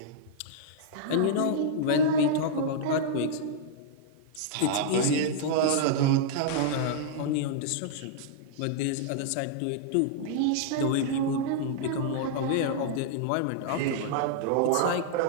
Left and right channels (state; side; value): different; both; correlation -0.02